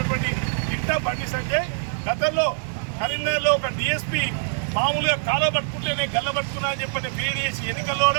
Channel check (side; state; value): left; silent; digital silence